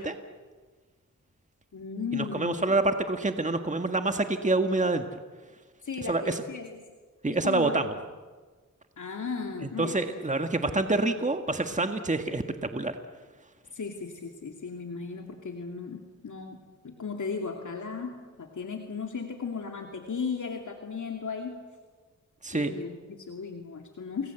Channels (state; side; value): normal; both; correlation 0.30